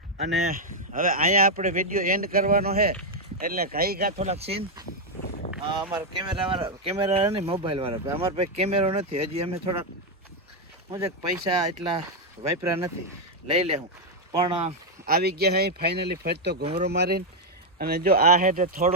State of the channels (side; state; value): both; normal; correlation 0.01